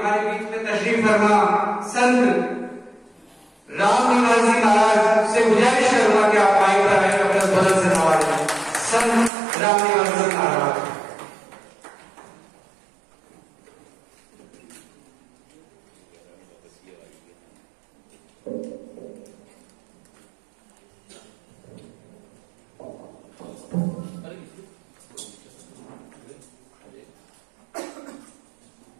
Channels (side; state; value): left; drops out; at 9.3 s